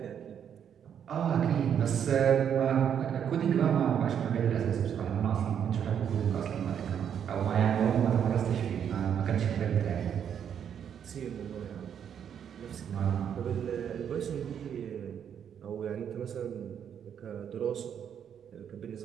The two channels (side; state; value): left; quieter; 8.5 dB